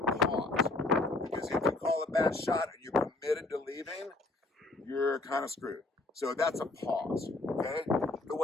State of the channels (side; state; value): right; quieter; 3.1 dB